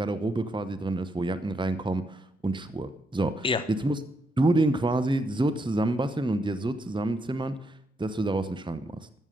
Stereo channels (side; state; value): both; normal; correlation 0.79